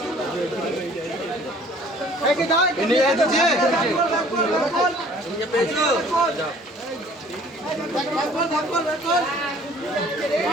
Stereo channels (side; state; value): both; normal; correlation 0.54